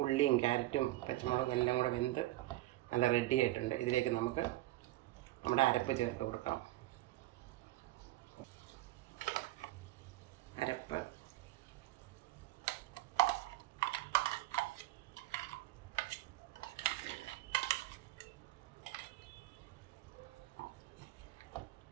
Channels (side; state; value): left; quieter; 17.1 dB